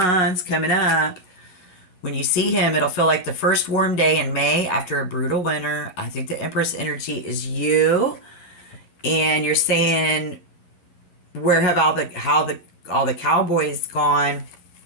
coming up. When you see him, it'll feel like the first warm day in May after a brutal winter. I think the Empress energy is you. And you're saying, where have all the cowboys gone?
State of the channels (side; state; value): right; late; 11 ms